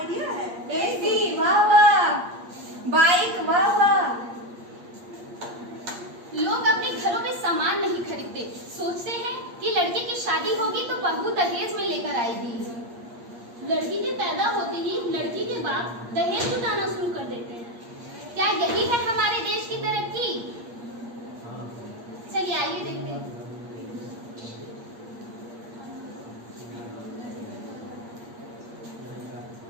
है। एसी वाह वाह, बाइक वाह वाह। लोग अपने घरों में सामान नहीं खरीदते, सोचते हैं कि लड़के की शादी होगी तो बहू दहेज में लेकर आएगी। लड़की के पैदा होते ही लड़की के बाप दहेज जुटाना शुरू कर देते हैं। क्या यही है हमारे देश की तरक्की? चलिए आइए देखते हैं।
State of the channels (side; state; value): left; late; 8.5 ms